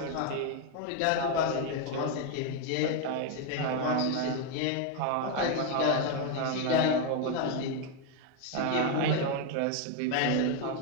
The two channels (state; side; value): different; both; correlation 0.01